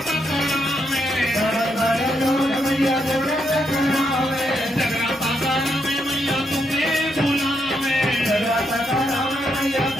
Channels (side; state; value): both; normal; correlation 0.79